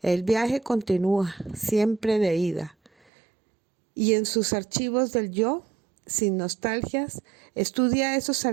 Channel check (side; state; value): left; drops out; at 2.9 s